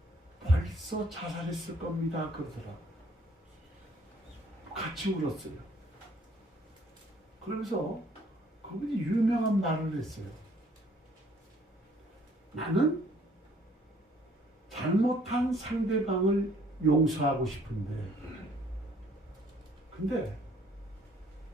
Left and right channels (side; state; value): both; normal; correlation 0.61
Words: 벌써 자살했을 겁니다. 그러더라고요. 같이 울었어요. 그러면서 그분이 유명한 말을 했어요. 나는 잘못한 상대방을 용서하고 싶은데 근데